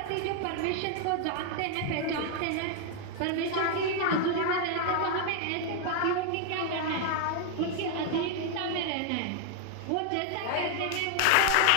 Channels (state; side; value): different; both; correlation 0.00